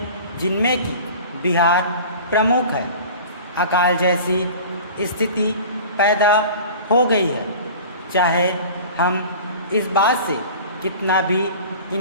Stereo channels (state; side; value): inverted; both; correlation -0.40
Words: जिनमें कि बिहार प्रमुख है, अकाल जैसी स्थिति पैदा हो गई है। चाहे हम इस बात से कितना भी